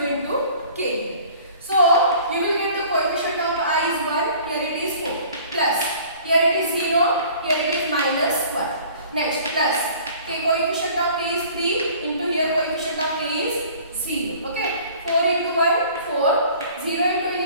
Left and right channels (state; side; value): inverted; both; correlation -0.49